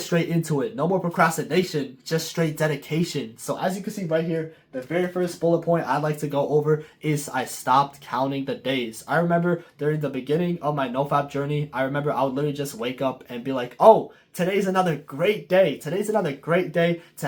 straight into it. No more procrastination, just straight dedication. So as you can see right here, the very first bullet point I'd like to go over is I stopped counting the days. I remember during the beginning of my NoFap journey, I remember I would literally just wake up and be like, oh, today's another great day. Today's another great day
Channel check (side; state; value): both; identical; correlation 1.00